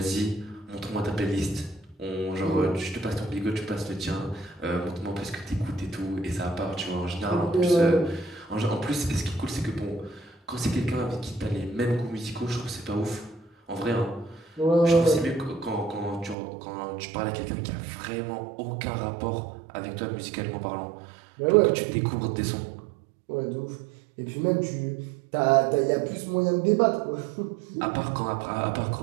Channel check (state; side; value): drops out; left; at 16.4 s